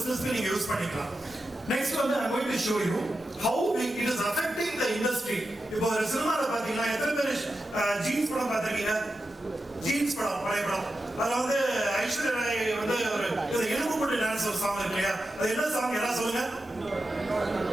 நீங்க use பண்ணிக்கலாம். Next வந்து I'm going to show you how it is affecting the industry. இப்போ ஒரு சினிமால பாத்தீங்கன்னா எத்தனை பேர் ஜீன்ஸ் படம் பார்த்திருக்கீங்க? ஜீன்ஸ் படம், பழைய படம். அதுல வந்து ஐஸ்வர்யா ராய் வந்து ஒரு எலும்பு போட்டு டான்ஸ் ஒரு சாங் இருக்கு இல்லையா? அது என்ன சாங் யாராவது சொல்லுங்க?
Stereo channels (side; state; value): both; normal; correlation 0.90